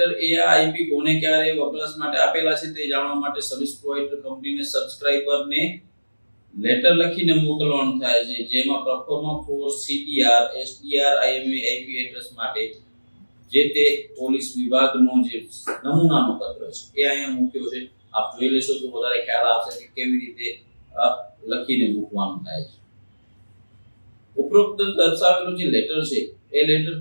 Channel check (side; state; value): both; inverted; correlation -1.00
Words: એ આ આઈપી કોને ક્યારે વપરાશ માટે આપેલા છે તે જાણવા માટે સર્વિસ પ્રોવાઇડર કંપનીને સબસ્ક્રાઇબરને લેટર લખીને મોકલવાનું થાય છે, જેમાં performer for CTR SDR IME IP address માટે જે તે પોલીસ વિભાગનો જે નમૂનાનો પત્ર છે એ અહીંયા મૂક્યો છે. આપ જોઈ લેશો તો વધારે ખ્યાલ આવશે કે કેવી રીતે લખીને મૂકવાનું થાય છે. ઉપરોક્ત દર્શાવેલું જે લેટર છે એ લેટર